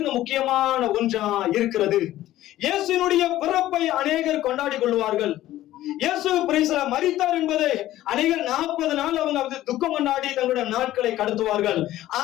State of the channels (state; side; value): quieter; right; 14.5 dB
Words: முக்கியமான ஒன்றா இருக்கிறது. இயேசுவினுடைய பிறப்பை அநேகர் கொண்டாடி கொள்வார்கள். இயேசு பிரைஸ்ல மரித்தார் என்பதை அநேகர் 40 நாள் அவங்க துக்கம் கொண்டாடி தங்களுடைய நாட்களை கடத்துவார்கள்.